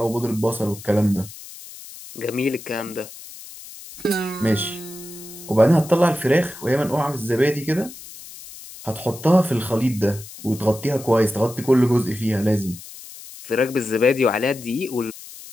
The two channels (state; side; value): noise; left; hiss, 16 dB below the sound